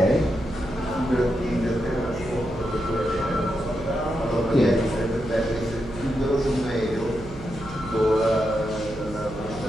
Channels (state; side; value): noise; right; hum, 13 dB below the sound